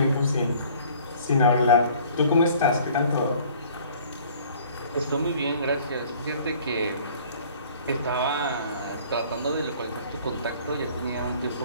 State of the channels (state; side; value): inverted; both; correlation -0.52